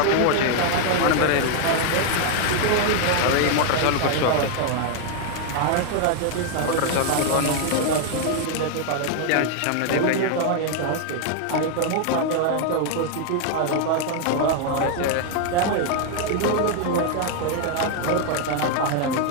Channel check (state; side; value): different; both; correlation 0.00